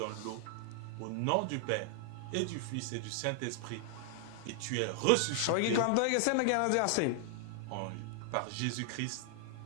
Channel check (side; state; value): both; different; correlation 0.00